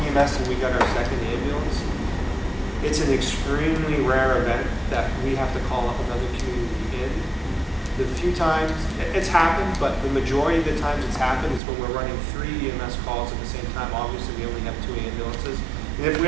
EMS and we got our second ambulance, it's an extremely rare event that we have to call up another community in. The few times it's happened, but the majority of the times it's happened is when we're running 3 EMS calls at the same time. Obviously, we only have 2 ambulances. And if we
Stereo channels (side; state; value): left; drops out; at 11.6 s